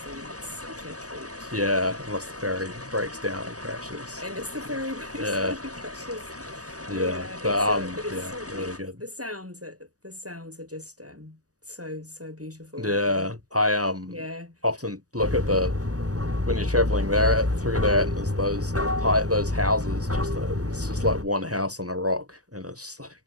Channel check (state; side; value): late; left; 0.67 ms